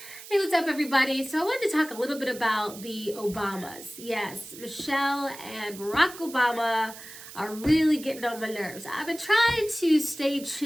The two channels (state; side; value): noise; right; hiss, 15 dB below the sound